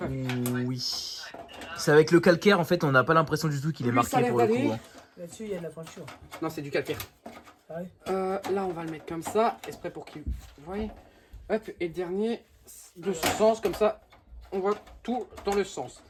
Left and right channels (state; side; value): identical; both; correlation 1.00